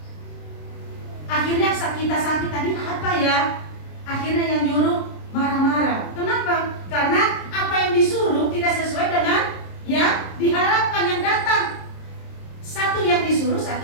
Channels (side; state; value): right; late; 26 ms